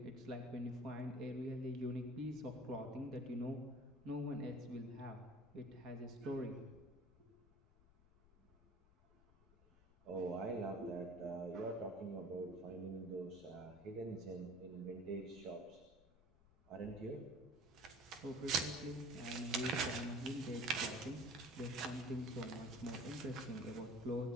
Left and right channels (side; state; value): left; noise; rumble, 26 dB below the sound